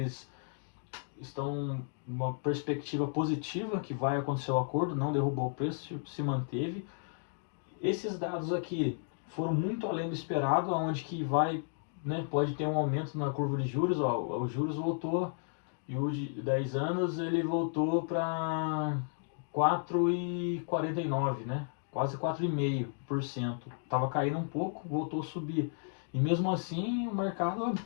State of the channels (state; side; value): silent; right; digital silence